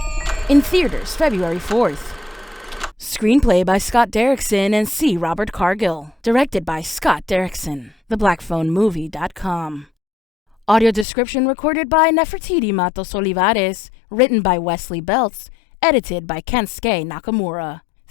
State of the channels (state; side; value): drops out; right; at 11.1 s